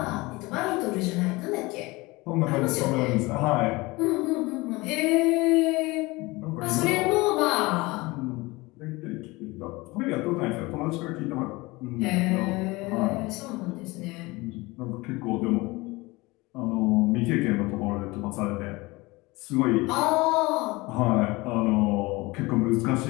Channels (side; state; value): right; quieter; 22.6 dB